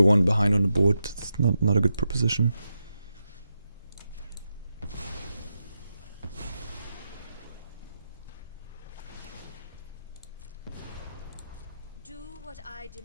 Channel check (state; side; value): inverted; both; correlation -0.88